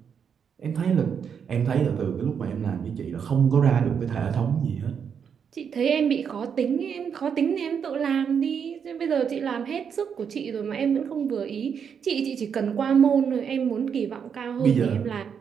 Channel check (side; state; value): left; quieter; 7.2 dB